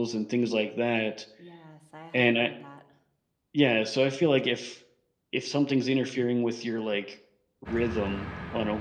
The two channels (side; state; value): both; identical; correlation 1.00